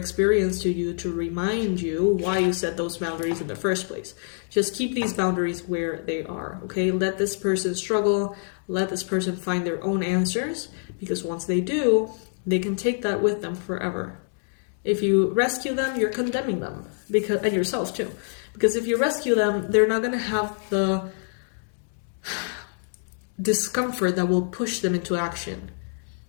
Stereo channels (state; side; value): silent; right; digital silence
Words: to you to remind you why you set those boundaries in the first place. Just keep these boundaries where they are, okay? Let this person struggle. Let this person find their own answers, because once they do, they can take that with them forever. If you rescue them, you're condemning them, and yourself too. Because if you rescue them, they're not going to have the discomfort that will push them into action